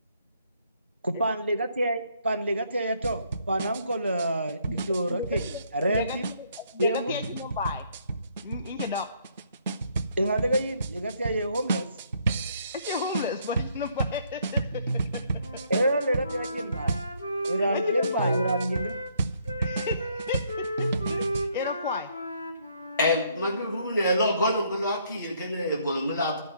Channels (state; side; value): inverted; both; correlation -0.69